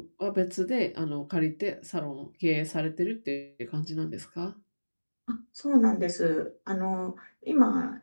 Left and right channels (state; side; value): inverted; both; correlation -1.00